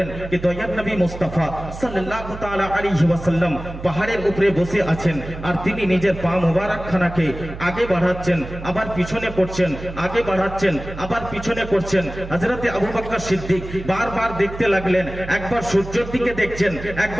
যে দয়ার নবী মুস্তাফা সাল্লাল্লাহু তাআলা আলাইহি ওয়াসাল্লাম পাহাড়ের উপরে বসে আছেন, আর তিনি নিজের পা মোবারকখানাকে আগে বাড়াচ্ছেন, আবার পিছনে করছেন, আগে বাড়াচ্ছেন, আবার পিছনে করছেন। হযরতে আবু বকর সিদ্দিক বারবার দেখতে লাগলেন, একবার সূর্যের দিকে দেখছেন,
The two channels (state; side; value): noise; right; hum, 11 dB below the sound